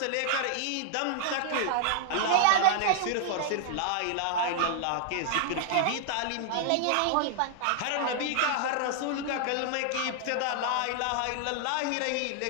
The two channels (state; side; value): different; both; correlation 0.00